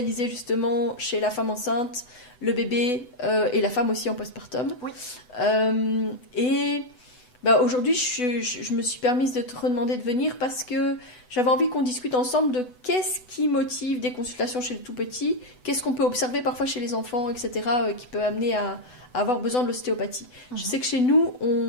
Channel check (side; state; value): right; late; 8.0 ms